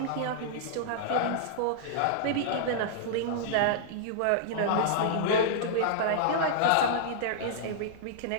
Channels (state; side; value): different; both; correlation -0.02